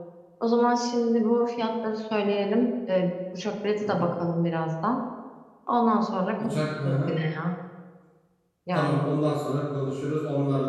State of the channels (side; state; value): both; identical; correlation 1.00